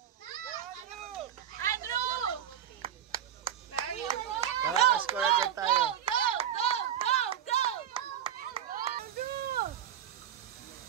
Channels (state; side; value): quieter; left; 10.2 dB